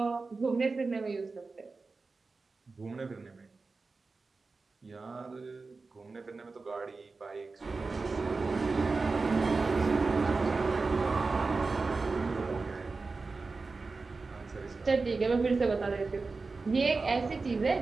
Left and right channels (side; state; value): left; quieter; 4.0 dB